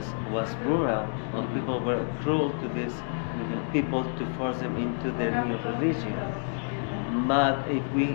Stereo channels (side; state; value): right; silent; 59 dB below the other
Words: was brutal, or people were cruel to these people to force them into their new religion. But if we